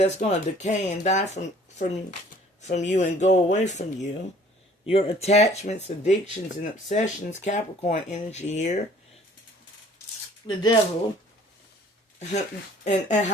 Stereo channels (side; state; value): both; normal; correlation 0.55